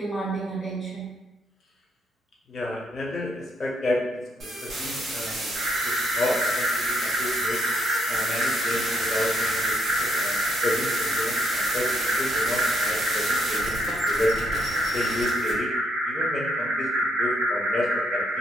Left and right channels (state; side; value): normal; both; correlation 0.74